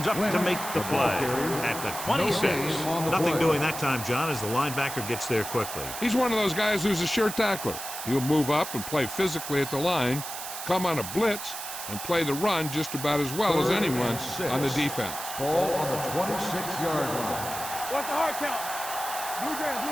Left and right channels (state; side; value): noise; right; hiss, 8 dB below the sound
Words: up to make the play at the 26. Nothing doing that time, John, as the linebacker gets there quickly. He's one of those guys who's a sure tackler. He'll move up and play physically at the line, come on a blitz, and play the run just about as well as anyone on the defense. Ball on the 26-yard line. What's the hard count? Blue game.